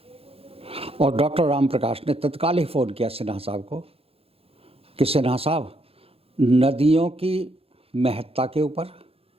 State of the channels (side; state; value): left; late; 0.28 ms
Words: और डॉक्टर राम प्रकाश ने तत्काल ही फ़ोन किया सिन्हा साहब को कि सिन्हा साहब, नदियों की महत्ता के ऊपर